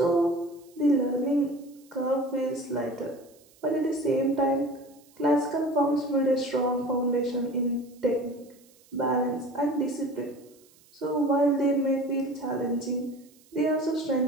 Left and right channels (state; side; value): noise; right; hiss, 29 dB below the sound